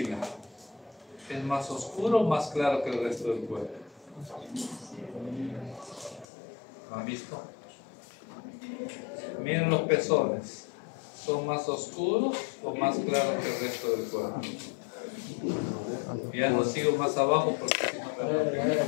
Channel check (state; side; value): drops out; right; at 6.2 s